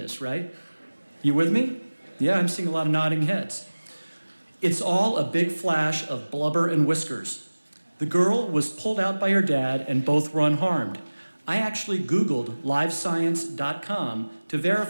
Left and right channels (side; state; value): both; inverted; correlation -1.00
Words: right? You with me? Yeah, I'm seeing a lot of nodding heads. It's all a big flash of blubber and whiskers. The girl was pulled out by her dad, and both were unharmed. I actually Googled livescience.com to